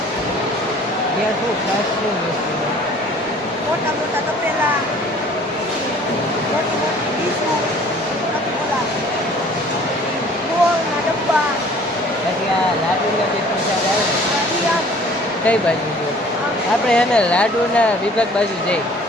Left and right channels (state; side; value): normal; both; correlation 0.52